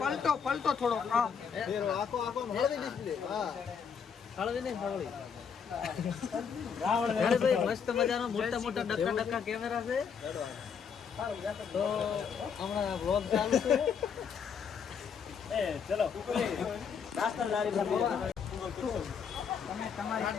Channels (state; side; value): quieter; right; 6.7 dB